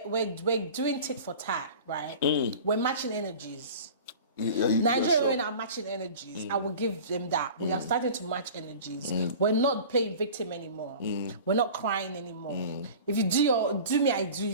doing tit for tat, right? We're matching energies. Nigerian women are matching energies. I will give them that. We are starting to match energies. We're not playing victim anymore. We're not crying anymore. If you do me, I do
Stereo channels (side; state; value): both; inverted; correlation -0.39